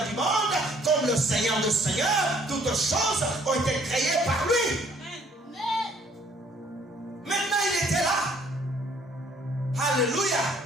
du monde, comme le Seigneur des Seigneurs. Toutes choses ont été créées par lui. Maintenant, il était là. Alléluia.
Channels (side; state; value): both; normal; correlation 0.61